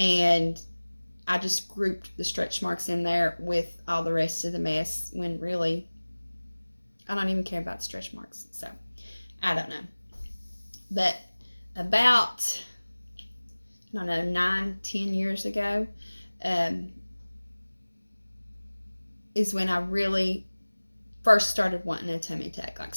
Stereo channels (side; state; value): both; inverted; correlation -1.00